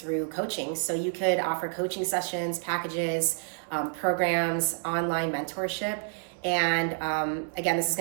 coaching. So you could offer coaching sessions, packages, programs, online mentorship. And again, this is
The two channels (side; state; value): left; silent; 59 dB below the other